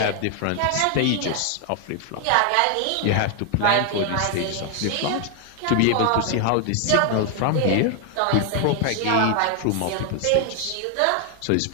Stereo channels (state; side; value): different; both; correlation 0.00